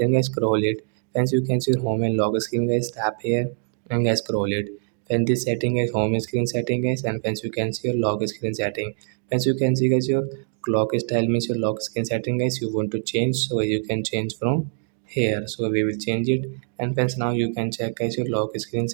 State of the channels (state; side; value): silent; left; digital silence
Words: guys scroll it. Once you can see home and lock screen guys, tap here and guys scroll it. When this setting is home screen setting guys, and once you can see your lock screen setting, once you can see guys your clock style means your lock screen setting guys you want to change, so you can change from here. So we will change it, and once now you can check guys your lock screen